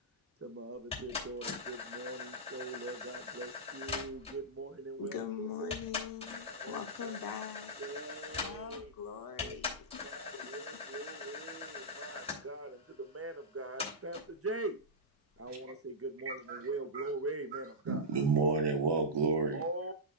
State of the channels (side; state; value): both; normal; correlation -0.12